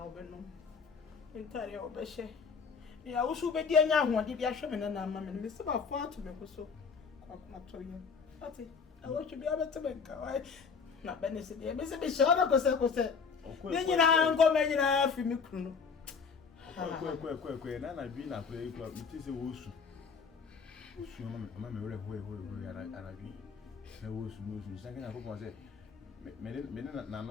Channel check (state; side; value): quieter; right; 5.5 dB